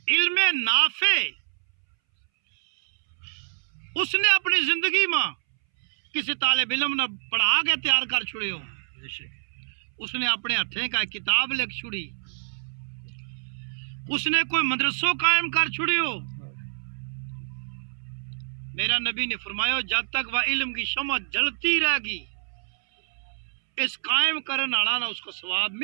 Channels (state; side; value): silent; left; 61 dB below the other